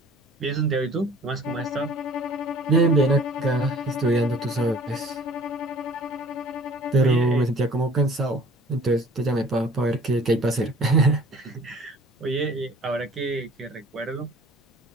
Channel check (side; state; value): both; normal; correlation 0.50